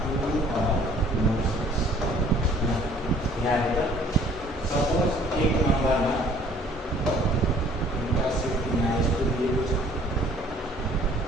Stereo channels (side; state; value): both; normal; correlation 0.56